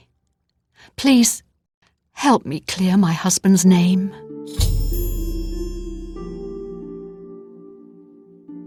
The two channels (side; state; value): both; identical; correlation 1.00